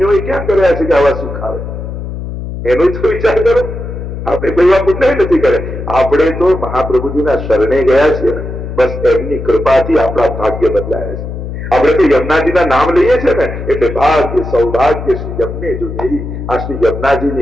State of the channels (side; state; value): left; noise; hum, 7 dB below the sound